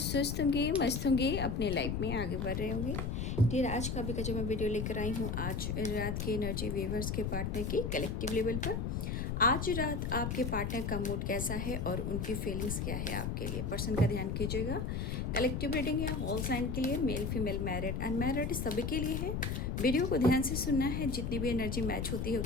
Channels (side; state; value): left; noise; rumble, 1 dB below the sound